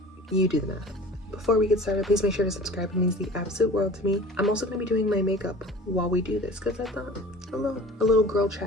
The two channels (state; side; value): normal; both; correlation 0.43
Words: You do the math. Before we get started, please make sure to subscribe. It means the absolute world to me. I'm also going to be doing my makeup while we do this because I thought a little girl